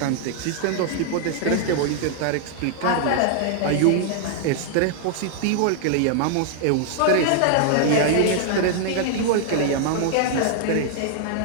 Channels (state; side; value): different; both; correlation -0.01